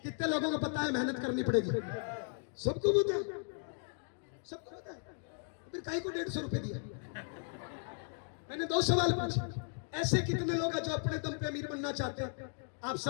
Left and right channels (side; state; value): right; silent; 54 dB below the other